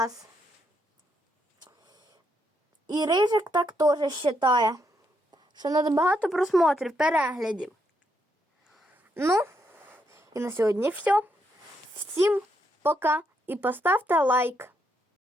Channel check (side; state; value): both; normal; correlation 0.78